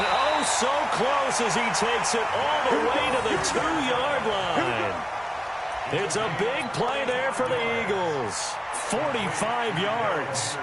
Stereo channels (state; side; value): identical; both; correlation 1.00